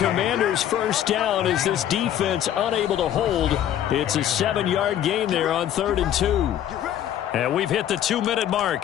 1st down as this defense unable to hold. It's a 7-yard gain there on 3rd and 2. And we've hit the 2-minute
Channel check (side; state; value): right; quieter; 11.0 dB